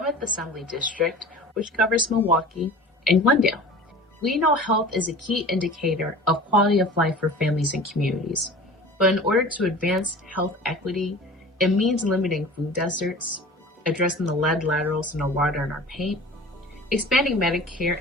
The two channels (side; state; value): both; normal; correlation 0.40